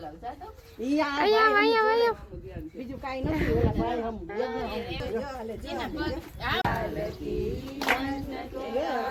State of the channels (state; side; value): identical; both; correlation 1.00